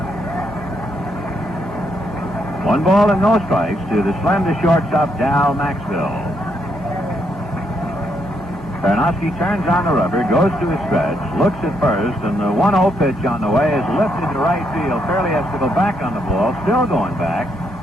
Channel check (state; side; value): normal; both; correlation 0.76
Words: 1 ball and no strikes to the slender shortstop Dow Maxwell. Peronowski turns on the rubber, goes to his stretch, looks at first, and the 1-0 pitch on the way is lifted to right field. Fairley has to go back on the ball, still going back,